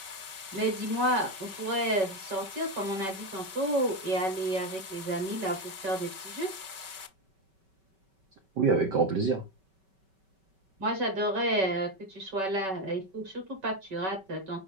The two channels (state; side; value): late; left; 5.2 ms